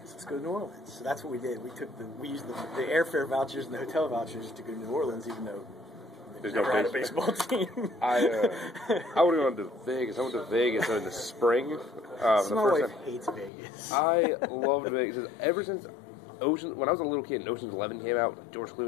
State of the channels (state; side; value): drops out; right; at 13.5 s